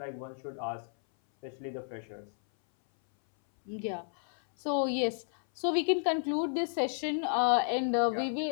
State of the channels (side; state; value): right; silent; 56 dB below the other